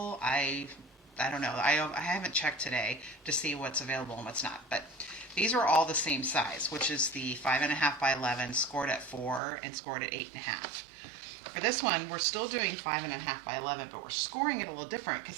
I don't know. I haven't checked today to see what's available and what's not, but these are all the same size, which is the 5.5 by 11 scored at 4 and scored at 8.5. For this one, we're still doing 5.5 by 11, but we're scoring it a little different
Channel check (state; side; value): drops out; left; at 9.4 s